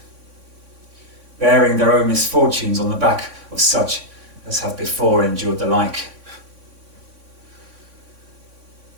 bearing their own misfortunes on the back of such as have before endured the like.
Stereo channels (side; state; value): left; late; 3.6 ms